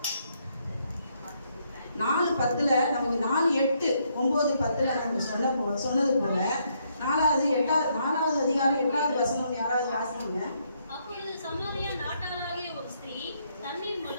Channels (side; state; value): both; inverted; correlation -0.74